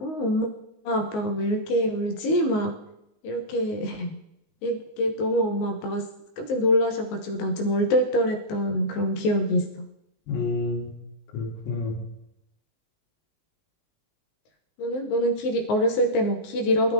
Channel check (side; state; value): right; late; 19 ms